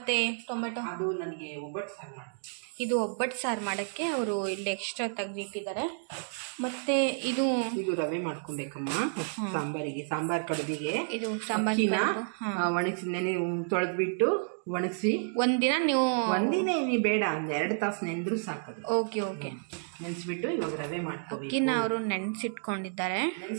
ಟೊಮೆಟೊ? ಅದು ನನಗೆ ಒಬ್ಬಟ್ಟು ಸಾರು ಮಾಡಿ, ಇದು ಒಬ್ಬಟ್ಟು ಸಾರು ಮಾಡೋಕ್ಕೆ ಅವರು ಇಲ್ಲಿ ಎಕ್ಸ್ಟ್ರಾ ತೆಗೆದಿಟ್ಟಿದ್ದಾರೆ. ಮತ್ತೆ ಇದು ರವೆ ಮಾಡ್ಕೊಬೇಕಮ್ಮ ಸಾಂಬಾರಿಗೆ, ಸಾಂಬಾರ್ ಕಡುಬಿಗೆ. ಇದು ಸಾಂಬಾರಿನ ಒಣಗಿಸಿ ತೊಳೆದ್ಬಿಟ್ಟು ಒಣಗಿಸಿ ಒಂದಿನ ನೀವು ಬೇಡ, ಒಂದು 2 ತಾಸು ನೆಂದ್ರೂ ಸಾಕದು. ಓಕೆ, ಓಕೆ, ನೆನೆಸ್ಬಿಟ್ಟು ಇವಾಗ ರವೆ ಮಾಡ್ಕೋಬೇಕು. ಅಕ್ಕಿನ ಅವರು ನೆನೆಸಿಟ್ಕೊಂಡಿದ್ದಾರೆ.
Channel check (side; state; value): left; silent; digital silence